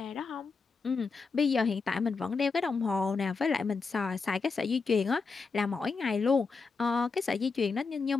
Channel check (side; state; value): right; quieter; 4.6 dB